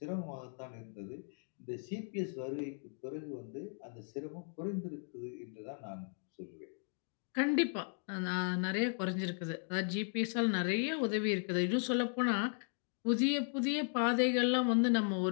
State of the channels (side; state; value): right; silent; 53 dB below the other